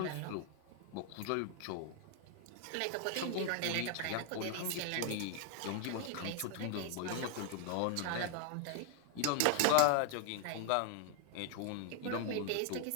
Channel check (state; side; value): different; both; correlation 0.00